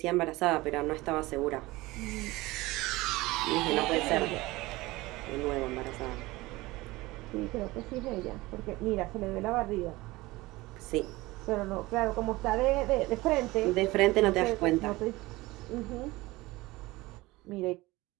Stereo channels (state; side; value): quieter; left; 20.3 dB